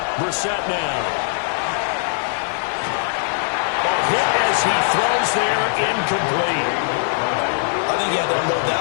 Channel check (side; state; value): right; silent; digital silence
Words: Brissett now. Hit as he throws there, incomplete. I think he had to unload